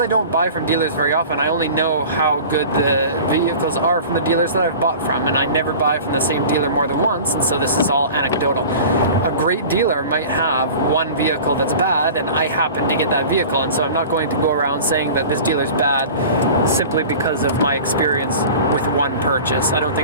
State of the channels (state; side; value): inverted; both; correlation -0.39